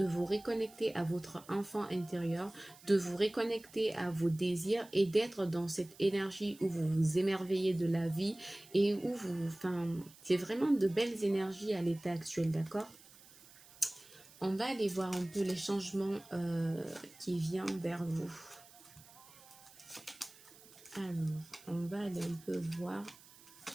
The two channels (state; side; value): noise; right; hiss, 23 dB below the sound